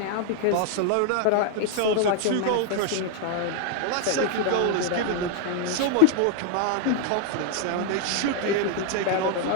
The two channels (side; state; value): both; different; correlation 0.00